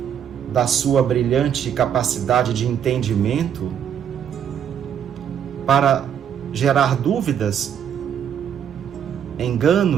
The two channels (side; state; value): left; quieter; 8.7 dB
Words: da sua brilhante capacidade de entendimento, para gerar dúvidas,